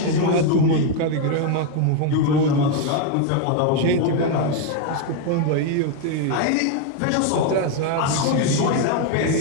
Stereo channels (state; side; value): different; both; correlation 0.01